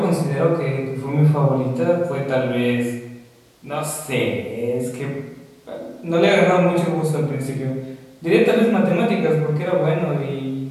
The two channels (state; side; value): identical; both; correlation 1.00